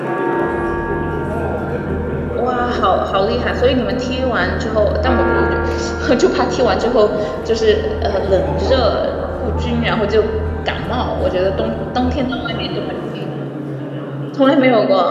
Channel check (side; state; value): both; identical; correlation 1.00